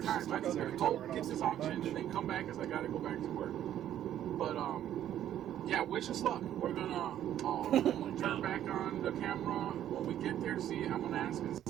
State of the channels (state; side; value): quieter; left; 11.3 dB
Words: Sabres. time. I just gotta Every go time get this we're on auction lunch. and then come back because I gotta go back to work. But yeah, wish us luck. We're gonna turn back on the camera when we get there. I'm gonna ask and